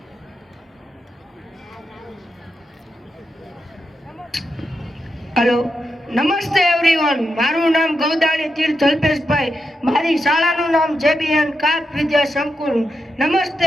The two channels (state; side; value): normal; both; correlation 0.86